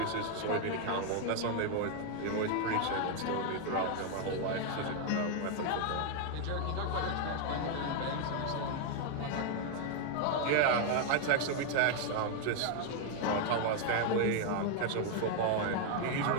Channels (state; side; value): different; both; correlation 0.01